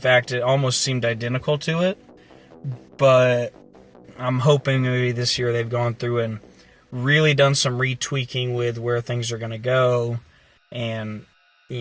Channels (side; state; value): both; identical; correlation 1.00